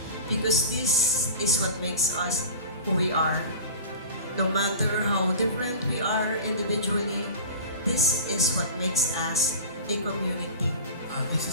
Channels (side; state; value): both; inverted; correlation -0.36